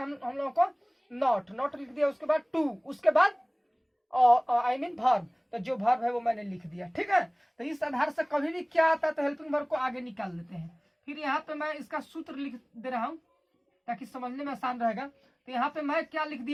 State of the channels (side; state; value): both; identical; correlation 1.00